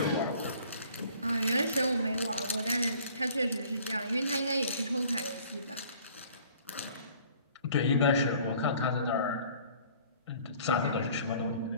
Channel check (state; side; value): inverted; both; correlation -0.53